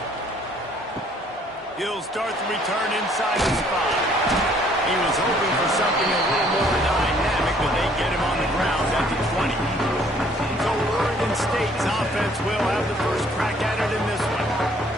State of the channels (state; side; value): normal; both; correlation 0.61